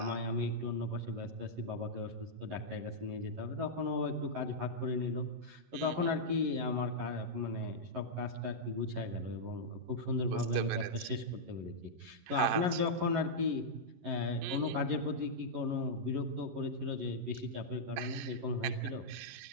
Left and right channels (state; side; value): late; left; 11 ms